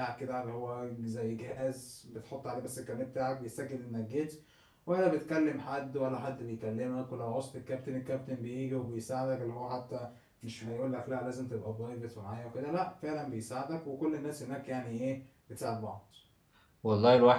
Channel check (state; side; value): identical; both; correlation 1.00